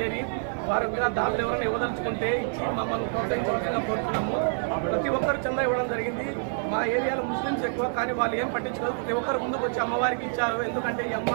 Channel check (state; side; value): silent; left; digital silence